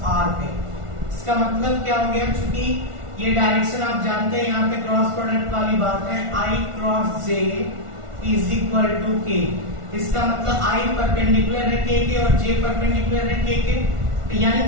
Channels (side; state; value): left; late; 1.4 ms